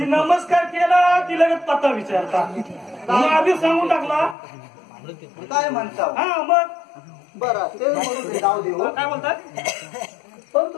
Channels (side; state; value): right; drops out; at 4.4 s